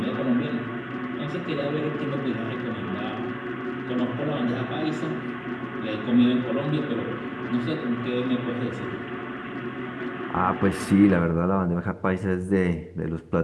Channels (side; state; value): both; identical; correlation 1.00